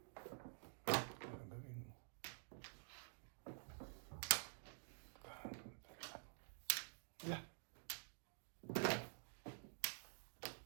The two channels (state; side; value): silent; left; digital silence